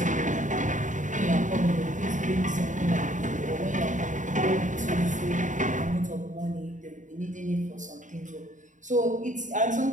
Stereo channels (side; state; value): left; late; 0.36 ms